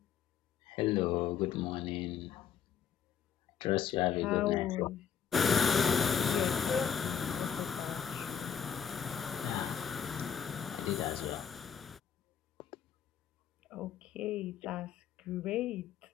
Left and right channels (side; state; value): right; quieter; 7.9 dB